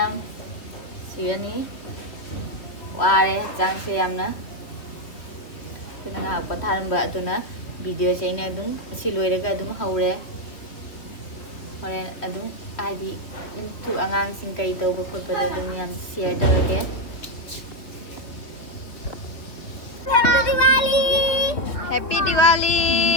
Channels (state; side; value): late; right; 3.2 ms